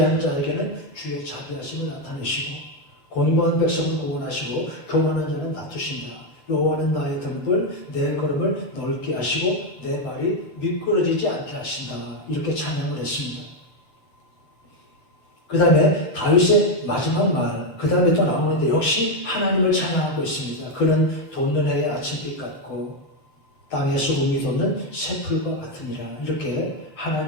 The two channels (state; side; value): late; right; 7.7 ms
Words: 자에게는 주의 자비하심을 나타내시고 곤고한 백성을 구원하시고 교만한 자는 낮추신다. 여호와는 나의 등불, 내 걸음을 넓게 하시고 내 발이 미끄러지지 않게 하신다. 이렇게 찬양을 했습니다. 그 다음에 다윗의 마지막 말, 그 다음에 또 나오는데 역시 하나님을 찬양하고 있습니다. 그는 돋는 해의 아침빛 같고 땅에서 우미 돋는 새풀과 같으니라. 이렇게